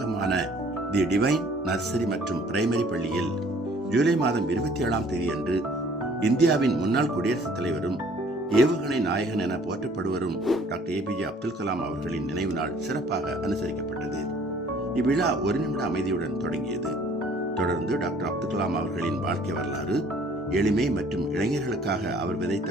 தி டிவைன் நர்சரி மற்றும் பிரைமரி பள்ளியில் ஜூலை மாதம் 27ஆம் தேதி அன்று இந்தியாவின் முன்னாள் குடியரசுத் தலைவரும் ஏவுகணை நாயகன் என போற்றப்படுவரும் டாக்டர் APJ அப்துல் கலாம் அவர்களின் நினைவு நாள் சிறப்பாக அனுசரிக்கப்பட்டது. இவ்விழா 1 நிமிட அமைதியுடன் தொடங்கியது. தொடர்ந்து டாக்டர் அப்துல் கலாம் அவர்களின் வாழ்க்கை வரலாறு, எளிமை மற்றும் இளைஞர்களுக்காக அவர் விதைத்த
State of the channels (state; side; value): normal; both; correlation 0.56